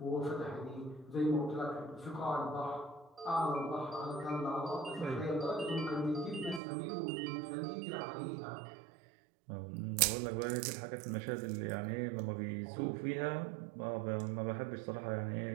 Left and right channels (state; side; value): drops out; left; at 6.6 s